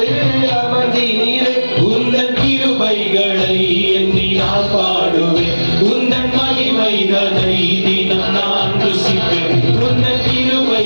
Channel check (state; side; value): inverted; both; correlation -1.00